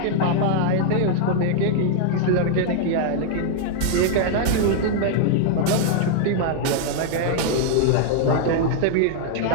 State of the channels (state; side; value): different; both; correlation 0.00